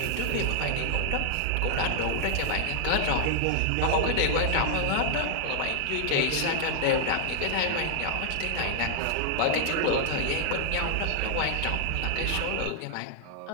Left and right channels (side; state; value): both; different; correlation 0.00